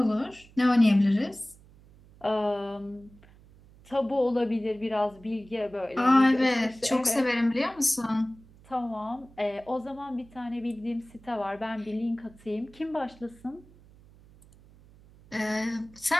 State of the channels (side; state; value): right; noise; hum, 25 dB below the sound